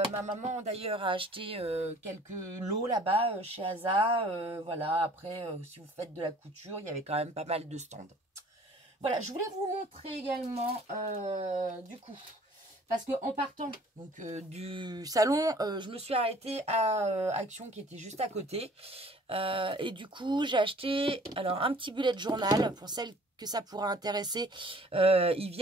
maman, d'ailleurs, a acheté quelques lots là-bas chez ASA. Voilà, après, si vous faites de la couture, il y avait quand même pas mal de stands. Voilà, je voulais vous montrer également, du coup, parce que en partant donc du salon, je me suis arrêtée à Action qui était juste à côté. Et du coup, j'ai acheté alors un petit bullet journal pour celles que ça pourra intéresser. Ils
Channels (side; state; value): both; normal; correlation 0.53